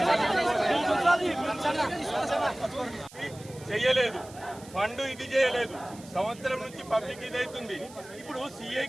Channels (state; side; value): noise; right; hiss, 20 dB below the sound